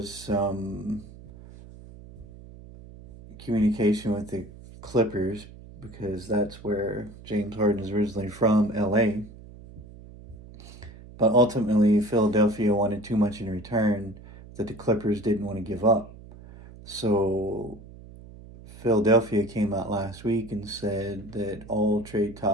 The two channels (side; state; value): right; noise; hum, 18 dB below the sound